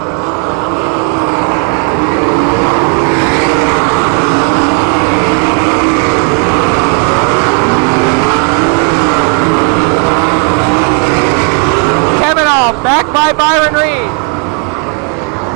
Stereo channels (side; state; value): left; quieter; 33.7 dB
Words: Back by Byron Reed.